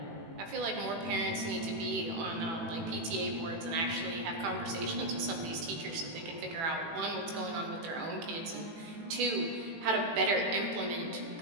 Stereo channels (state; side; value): late; left; 18 ms